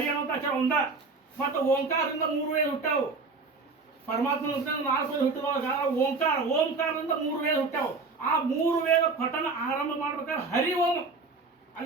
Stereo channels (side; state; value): left; quieter; 4.0 dB